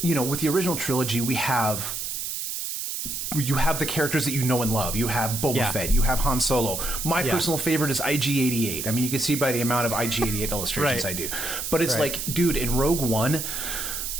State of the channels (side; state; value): right; noise; hiss, 4 dB below the sound